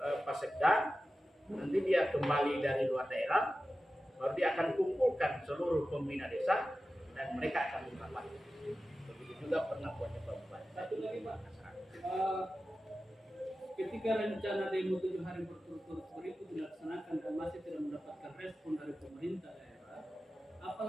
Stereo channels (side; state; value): both; normal; correlation 0.94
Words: Sekda, nanti dia kembali dari luar daerah, baru dia akan kumpulkan seluruh pembina desa dan mereka akan merapat. Begitu juga pernah buatnya Pak Bupati. Satu lagi Pak, ketika rencana demo 7 hari berturut-turut itu dilaksanakan dan masih tidak mendapatkan respon dari pemerintah daerah, apa